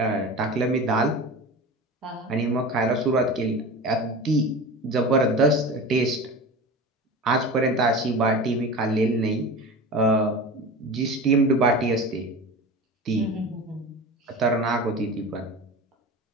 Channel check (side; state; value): both; normal; correlation 0.31